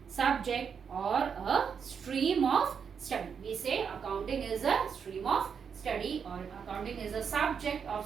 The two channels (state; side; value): quieter; left; 6.7 dB